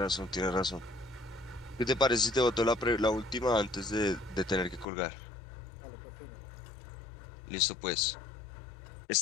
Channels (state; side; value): drops out; right; at 4.9 s